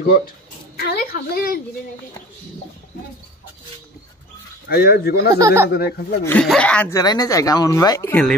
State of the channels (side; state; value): both; normal; correlation 0.41